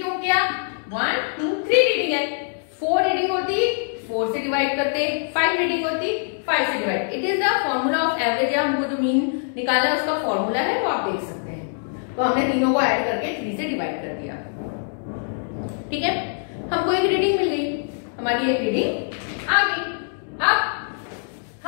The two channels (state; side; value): silent; right; digital silence